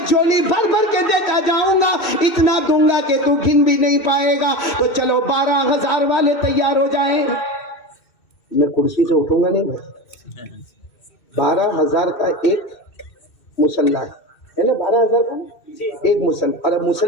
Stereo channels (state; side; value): late; right; 2.6 ms